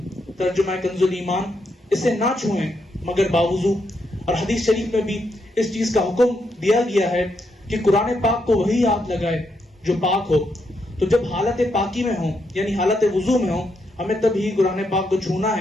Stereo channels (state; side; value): normal; both; correlation 0.80